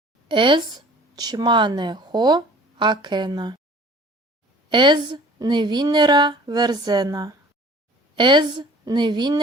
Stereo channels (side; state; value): both; normal; correlation 0.48